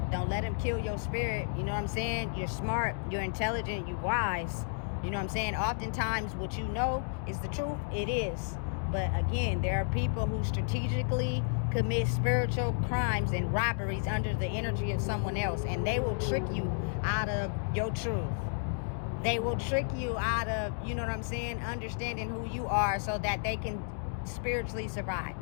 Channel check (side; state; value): right; silent; digital silence